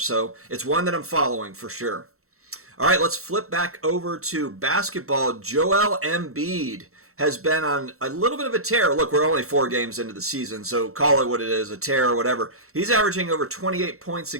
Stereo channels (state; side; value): late; left; 0.63 ms